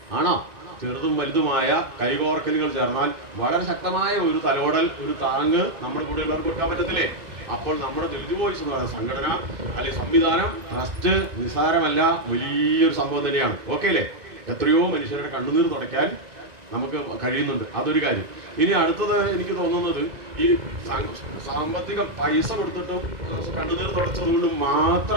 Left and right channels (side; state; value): left; late; 2.6 ms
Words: ആണോ? ചെറുതും വലുതുമായ കൈകോർക്കലുകൾ ചേർന്നാൽ വളരെ ശക്തമായ ഒരു തലോടൽ, ഒരു താങ്ങ് നമ്മുടെ കൂടെ ഉള്ളവർക്ക് കൊടുക്കാൻ പറ്റത്തില്ലേ? അപ്പോൾ നമ്മുടെ ദളിത് വോയിസ് എന്ന് പറയുന്ന സംഘടന അല്ലെങ്കിൽ സംവിധാനം, ട്രസ്റ്റ് നിസ്സാരമല്ല, വലിയൊരു സംഭവം തന്നെയാണ്. ഓക്കെ അല്ലേ? എത്രയോ മനുഷ്യരുടെ കണ്ണുനീർ തുടയ്ക്കാൻ നമുക്ക് കഴിയുന്നുണ്ട്. അതൊരു കാര്യം. ഇനി അടുത്തത് എനിക്ക് തോന്നുന്നത്, ഈ സാമ്പത്തിക പൈസ കൊടുത്തിട്ടും കണ്ണുനീർ തുടച്ചത് കൊണ്ട്